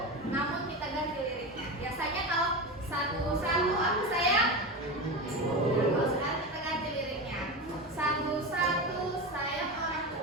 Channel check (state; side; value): normal; both; correlation 0.22